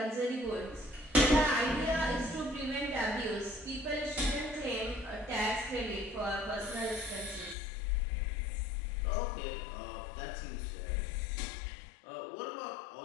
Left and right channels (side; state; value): right; drops out; at 7.6 s